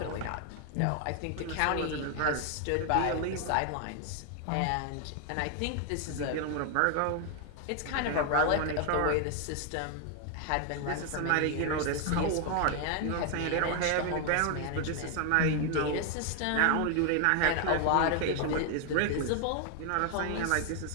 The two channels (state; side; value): different; both; correlation 0.00